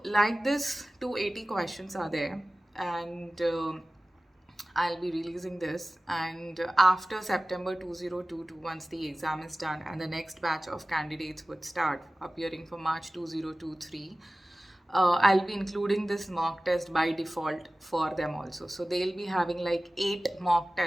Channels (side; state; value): both; normal; correlation 0.96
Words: like this, 280 questions are there, and I'll be releasing this, and after September 2022, once the exam is done and the next batch of candidates would start appearing for March 2023, I'll be including this mock test by default for them also. So they'll be having like 8 mock